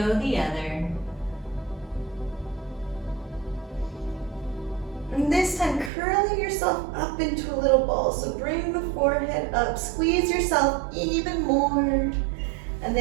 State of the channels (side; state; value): left; drops out; at 5.9 s